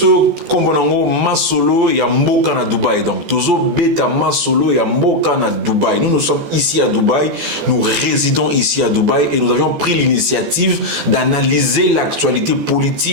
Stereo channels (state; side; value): late; left; 14 ms